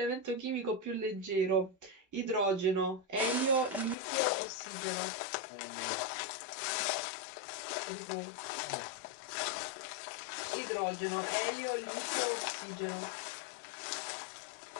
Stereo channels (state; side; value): drops out; right; at 4.0 s